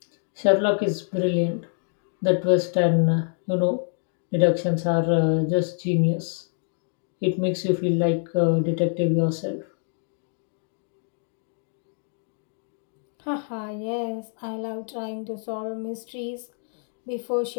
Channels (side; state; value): right; silent; 61 dB below the other